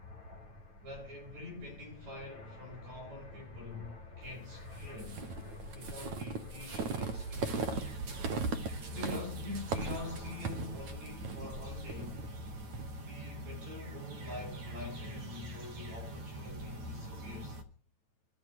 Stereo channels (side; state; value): left; late; 9.1 ms